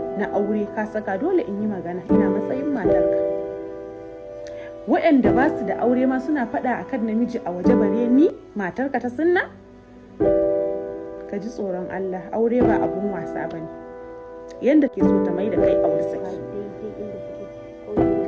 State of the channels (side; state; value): both; identical; correlation 1.00